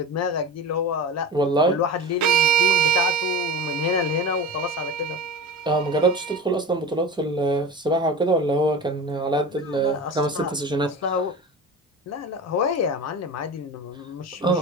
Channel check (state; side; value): normal; both; correlation 0.31